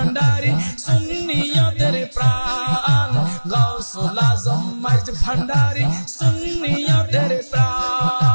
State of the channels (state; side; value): inverted; both; correlation -1.00